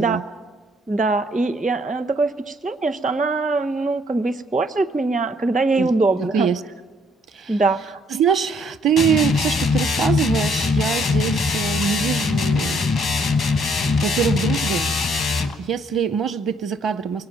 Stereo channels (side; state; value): both; normal; correlation 0.66